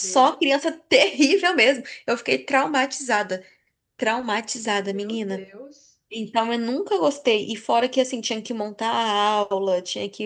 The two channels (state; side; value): identical; both; correlation 1.00